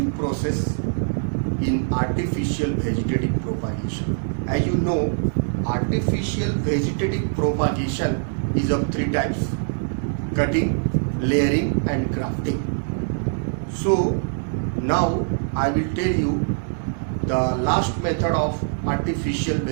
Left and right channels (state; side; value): silent; left; 59 dB below the other